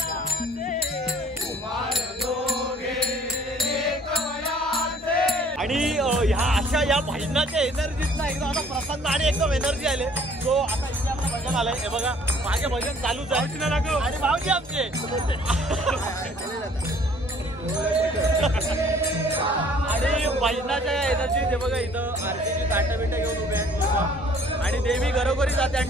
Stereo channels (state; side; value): normal; both; correlation 0.56